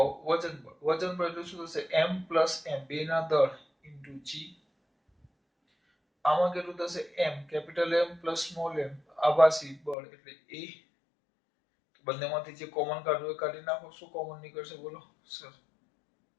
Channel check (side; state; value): right; drops out; at 10.0 s